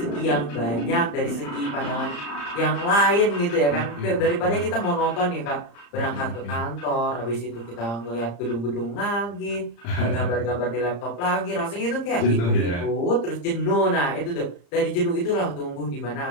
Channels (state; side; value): late; right; 35 ms